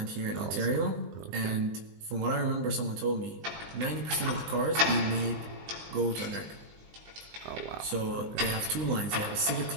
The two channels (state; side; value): late; left; 20 ms